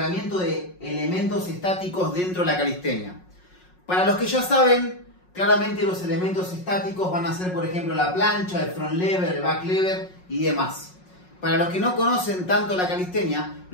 de elementos estáticos dentro de la calistenia. Para los que ya saben, claramente los elementos estáticos van a ser, por ejemplo, la plancha, el front lever, el back lever y demás. Para los que no conocen tanto la calistenia,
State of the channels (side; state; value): right; late; 5.5 ms